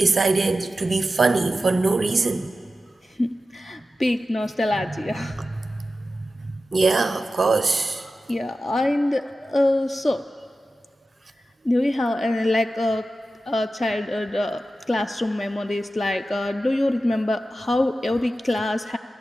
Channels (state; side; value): normal; both; correlation 0.93